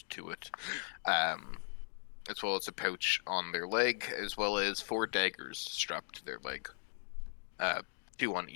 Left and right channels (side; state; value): right; silent; 52 dB below the other